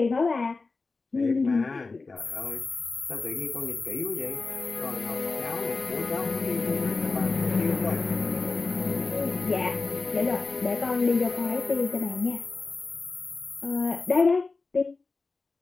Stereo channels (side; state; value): right; quieter; 3.9 dB